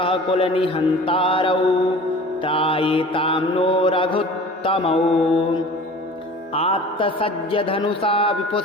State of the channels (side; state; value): both; normal; correlation 0.42